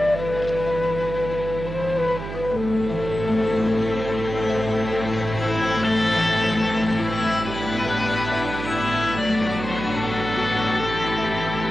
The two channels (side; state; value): right; noise; hum, 8 dB below the sound